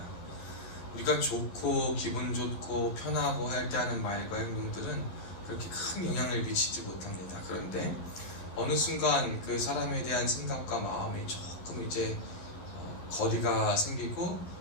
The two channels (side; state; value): right; late; 11 ms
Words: 우리가 좋고 기분 좋고 편하고 할 때 하는 말과 행동들은 그렇게 큰 영향을 미치지 못합니다. 그런데 어느 순간 그 사람에 대한 생각과 마음이 조금 이제 거리가 생기고